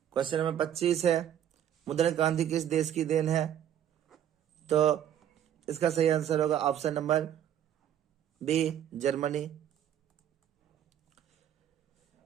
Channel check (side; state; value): left; quieter; 10.4 dB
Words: क्वेश्चन नंबर 25 है, मुद्रण क्रांति किस देश की देन है? तो इसका सही आंसर होगा option number B Germany.